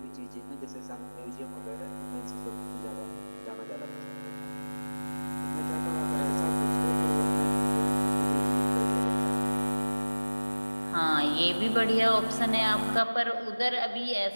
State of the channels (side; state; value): both; inverted; correlation -1.00